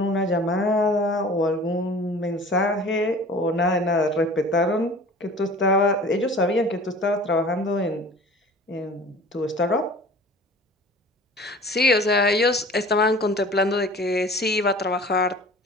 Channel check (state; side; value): normal; both; correlation 0.43